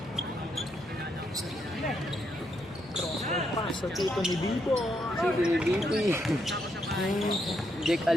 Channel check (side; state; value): both; normal; correlation 0.78